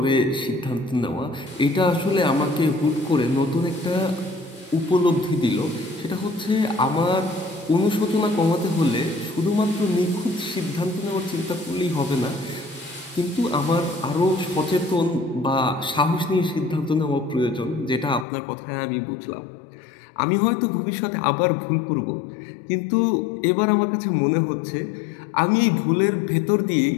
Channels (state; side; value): drops out; right; at 18.2 s